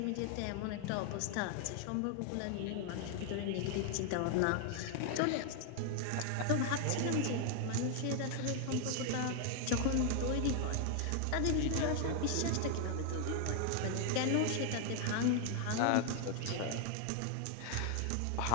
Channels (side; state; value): both; different; correlation 0.00